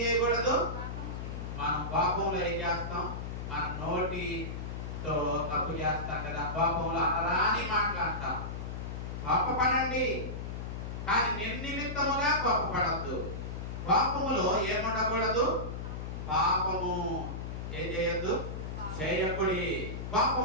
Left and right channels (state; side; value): noise; left; hum, 6 dB below the sound